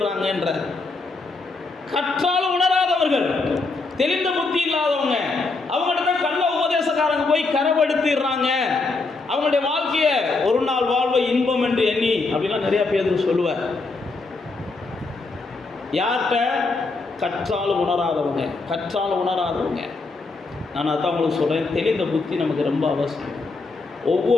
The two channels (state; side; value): quieter; right; 3.7 dB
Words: கற்றாலும் உணராதவர்கள், தெளிந்த புத்தி இல்லாதவங்க, அவங்கள்ட்ட தான் கள்ள உபதேசக்காரங்க போய் கரைப்படுத்திடுறாங்க. அவங்களுடைய வாழ்க்கையை ஒரு நாள் வாழ்வை இன்பம் என்று எண்ணி அப்படிலாம் நிறைய பேர் சொல்லுவார். யார்கிட்ட? கற்றாலும் உணராதவங்க, கற்றாலும் உணராதவங்க. நான் அதான் உங்களுக்கு சொல்கிறேன், தெளிந்த புத்தி நமக்கு ரொம்ப அவசியம்.